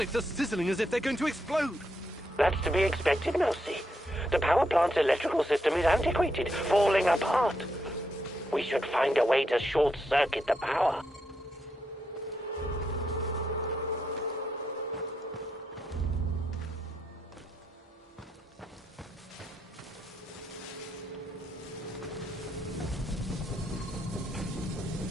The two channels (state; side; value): normal; both; correlation 0.80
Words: are sizzling as if they're going to explode. That's to be expected, Mousy. The power plant's electrical system is antiquated, falling apart. We should find a way to short-circuit the power.